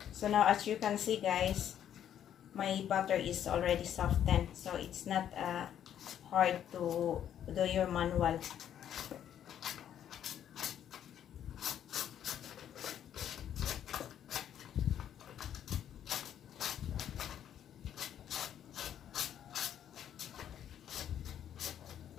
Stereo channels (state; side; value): quieter; right; 10.0 dB